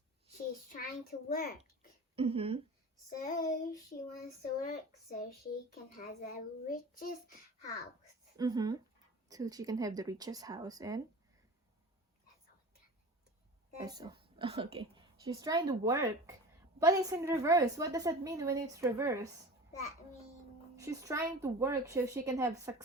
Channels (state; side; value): normal; both; correlation 0.35